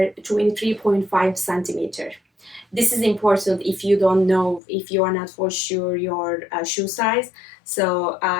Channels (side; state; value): right; drops out; at 4.6 s